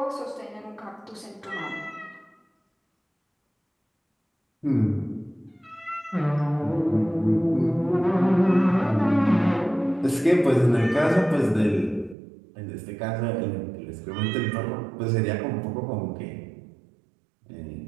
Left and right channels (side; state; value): left; drops out; at 12.2 s